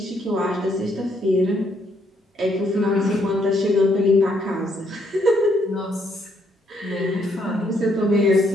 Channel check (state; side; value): normal; both; correlation 0.72